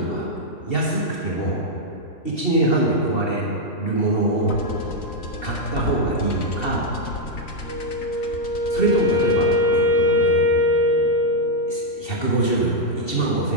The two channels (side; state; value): right; late; 2.7 ms